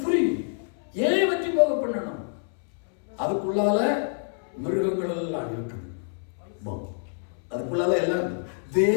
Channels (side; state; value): right; silent; 60 dB below the other